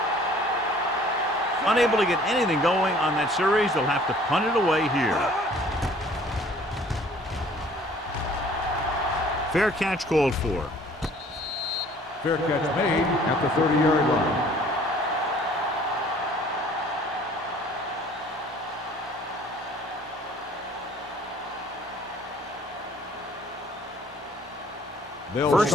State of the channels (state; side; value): normal; both; correlation 0.54